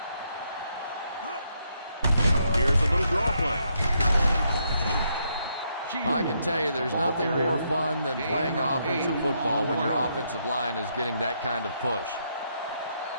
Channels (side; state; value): both; inverted; correlation -0.76